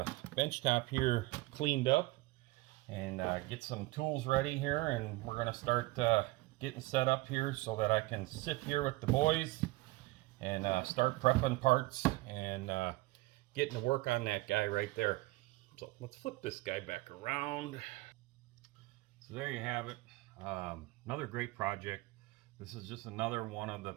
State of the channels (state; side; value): quieter; left; 20.4 dB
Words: bench top here cleaned up and get some tools ready here, and we're gonna start getting set up here so that I can sit here with the boys and start prepping parts and getting to work on that guy right there. So let's flip this guy back around. So there you have it. Another great project. This is just another one of the